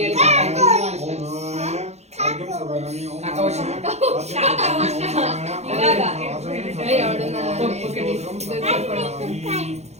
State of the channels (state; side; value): late; left; 0.32 ms